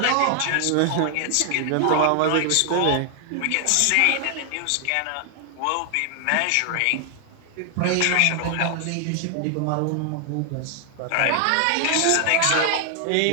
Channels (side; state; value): both; different; correlation 0.00